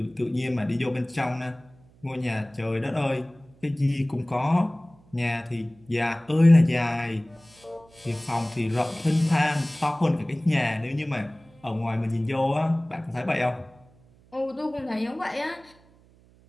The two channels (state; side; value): noise; right; hum, 28 dB below the sound